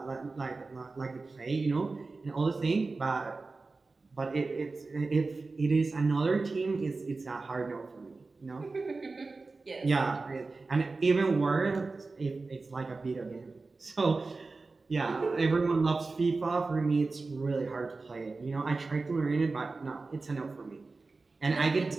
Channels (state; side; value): quieter; left; 3.8 dB